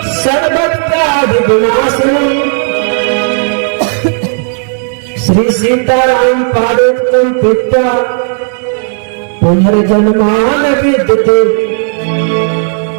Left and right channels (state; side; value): silent; left; 70 dB below the other